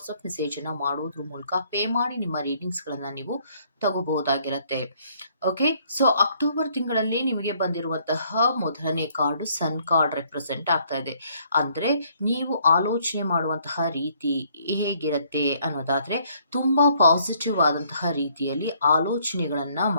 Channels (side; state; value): both; inverted; correlation -0.65